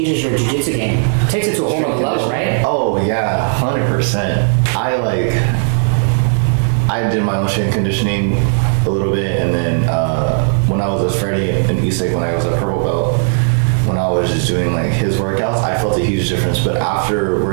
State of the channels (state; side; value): silent; left; 68 dB below the other